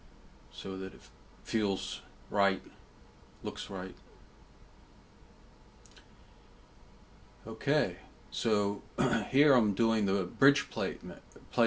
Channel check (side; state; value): both; identical; correlation 1.00